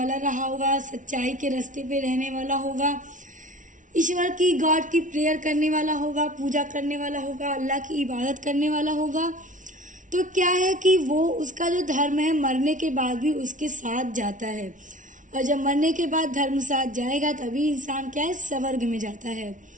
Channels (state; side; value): late; left; 0.37 ms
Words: रहा होगा, सच्चाई के रास्ते पे रहने वाला होगा, ईश्वर की, गॉड की प्रेयर करने वाला होगा, पूजा करने वाला होगा, अल्लाह की इबादत करने वाला होगा, तो क्या है कि वो, उसका जो धर्म है मरने के बाद भी उसके साथ जाता है। और जब मरने के बाद धर्म साथ जाएगा तभी इंसान क्या है, स्वर्ग में जाता है।